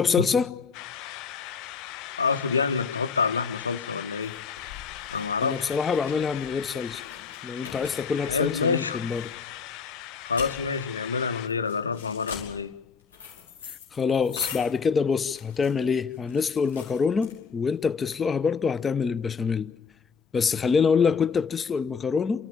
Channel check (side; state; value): right; quieter; 5.5 dB